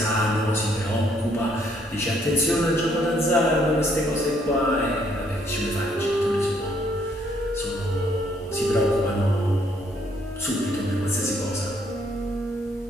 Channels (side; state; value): both; normal; correlation 0.68